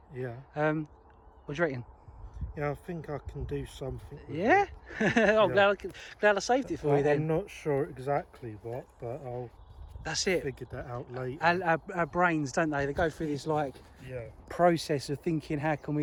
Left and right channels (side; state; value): both; identical; correlation 1.00